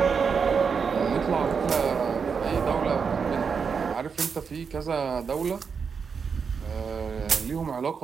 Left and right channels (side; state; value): left; quieter; 5.9 dB